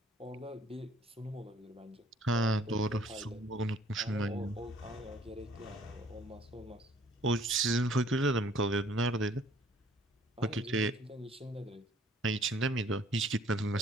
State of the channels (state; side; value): normal; both; correlation 0.58